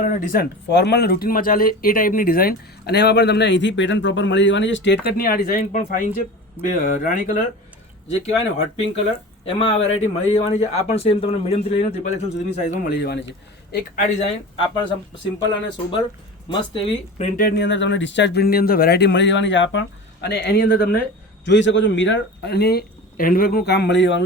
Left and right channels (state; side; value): normal; both; correlation 0.34